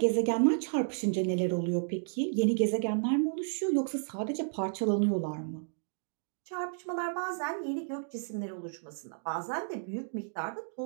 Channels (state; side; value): silent; left; digital silence